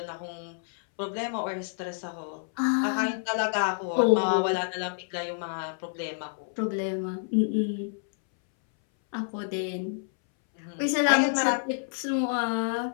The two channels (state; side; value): silent; right; 59 dB below the other